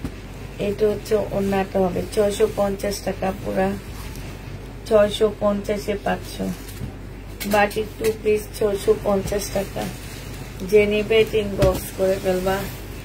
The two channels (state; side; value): identical; both; correlation 1.00